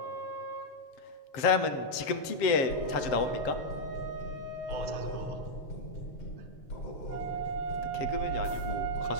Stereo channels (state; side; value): late; right; 7.5 ms